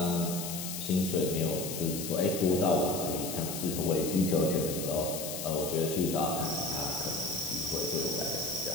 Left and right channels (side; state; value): left; noise; hiss, 6 dB below the sound